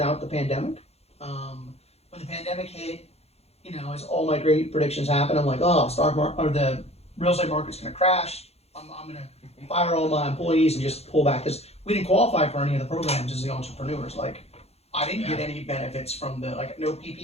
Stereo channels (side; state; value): right; late; 0.30 ms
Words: the pandemic. When the pandemic hit, as all my great predictions happened, I'm like, oh, the real estate market's going to crash. I'm going to fire all my employees and just pull back, because we didn't qualify for any of the programs as the entrepreneurs. Like, I didn't get any benefits from no